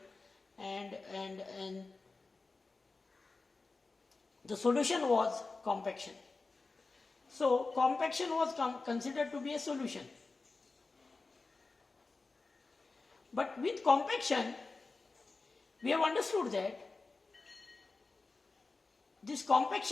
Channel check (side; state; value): right; quieter; 3.8 dB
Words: and the solution was compaction. So compaction was considered to be a solution. But with compaction, we have understood that this